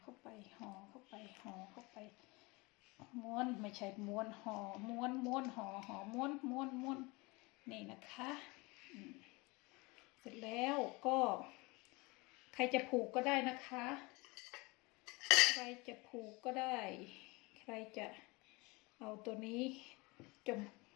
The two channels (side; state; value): right; quieter; 25.3 dB